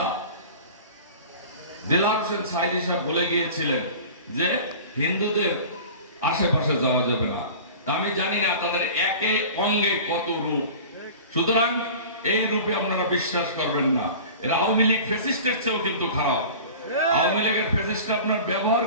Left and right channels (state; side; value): inverted; both; correlation -0.39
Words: দেলাওয়ার হোসেন সাঈদী সাহেব বলে গিয়েছিলেন যে হিন্দুদের আশেপাশে যাওয়া যাবে না। আমি জানি না তাদের একে অঙ্গে কত রূপ, সুতরাং এই রূপে আপনারা বিশ্বাস করবেন না। এরা আওয়ামী লীগ ফ্যাসিস্টের চেয়েও কিন্তু খারাপ। আওয়ামী লীগের ফ্যাসিস্ট আপনার ব্যবহার